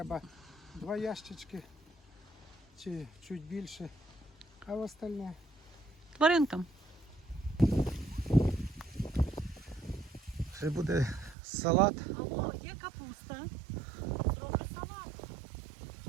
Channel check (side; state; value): left; drops out; at 11.4 s